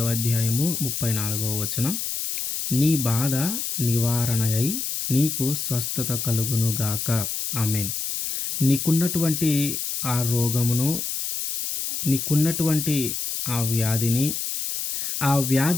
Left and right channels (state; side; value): noise; left; hiss, 3 dB below the sound